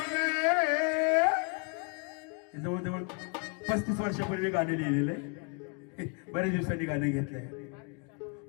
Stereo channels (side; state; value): right; quieter; 35.4 dB